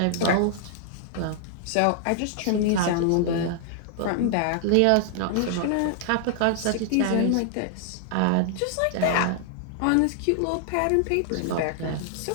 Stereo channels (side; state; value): both; different; correlation 0.00